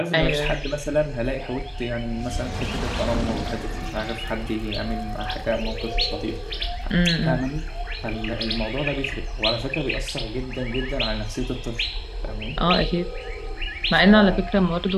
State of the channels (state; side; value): identical; both; correlation 1.00